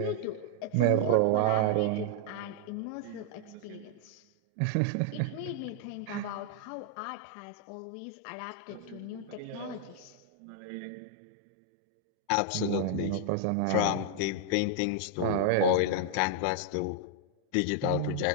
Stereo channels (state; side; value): different; both; correlation -0.01